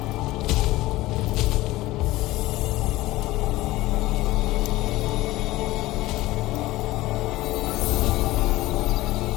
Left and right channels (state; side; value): quieter; right; 18.0 dB